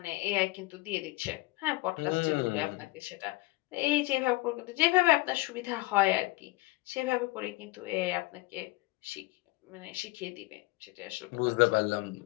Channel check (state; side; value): quieter; right; 21.4 dB